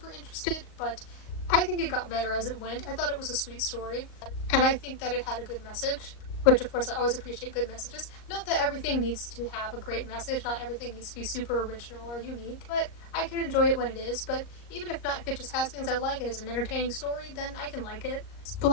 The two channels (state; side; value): late; right; 38 ms